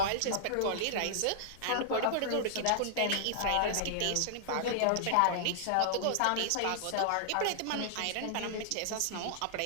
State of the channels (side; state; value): both; different; correlation -0.01